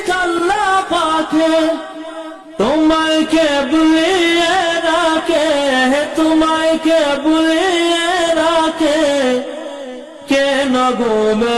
আল্লাহ পাকে তোমায় কে বুলিয়ে রাখে তোমায় কে বুলিয়ে রাখে কেন ঘুমে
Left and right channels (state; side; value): identical; both; correlation 1.00